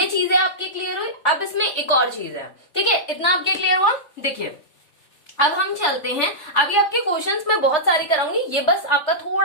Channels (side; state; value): right; late; 3.4 ms